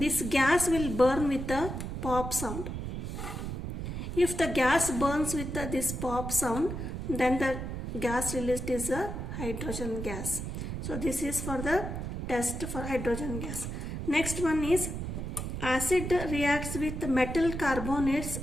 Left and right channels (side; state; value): right; noise; rumble, 5 dB below the sound